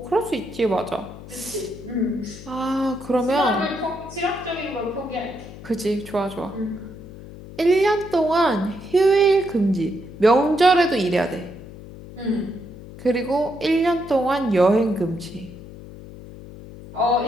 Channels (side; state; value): left; noise; hum, 15 dB below the sound